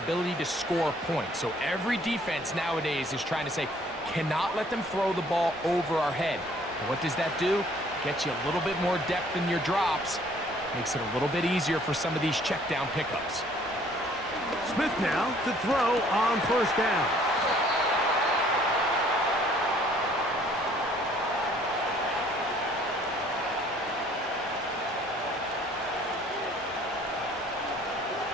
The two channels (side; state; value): both; normal; correlation 0.59